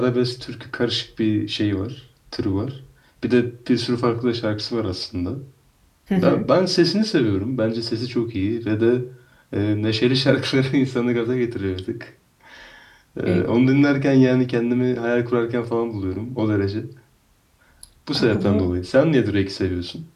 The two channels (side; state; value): both; identical; correlation 1.00